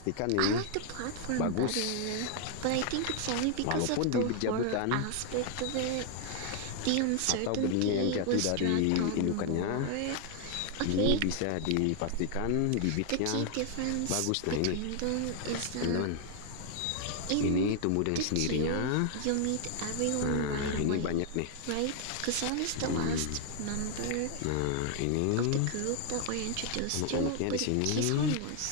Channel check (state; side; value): different; both; correlation 0.00